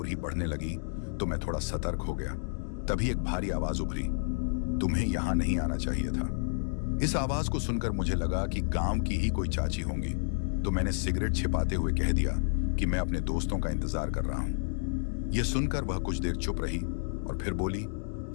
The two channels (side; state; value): right; silent; digital silence